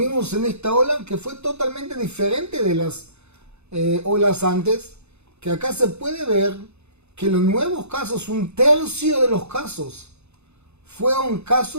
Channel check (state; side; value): late; left; 0.81 ms